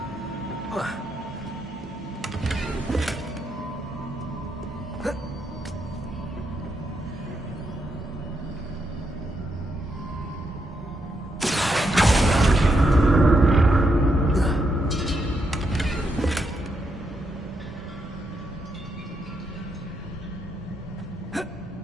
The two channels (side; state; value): both; normal; correlation 0.80